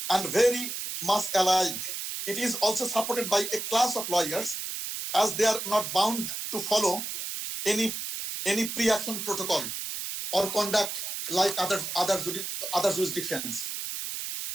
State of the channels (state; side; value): noise; right; hiss, 5 dB below the sound